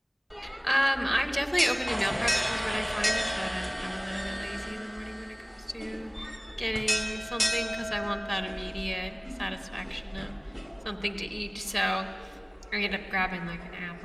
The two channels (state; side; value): identical; both; correlation 1.00